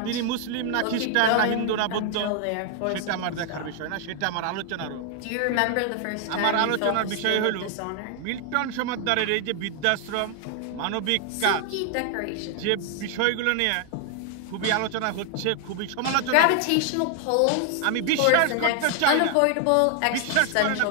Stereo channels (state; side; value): different; both; correlation 0.00